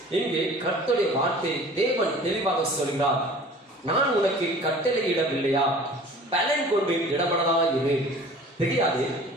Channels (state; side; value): normal; both; correlation 0.45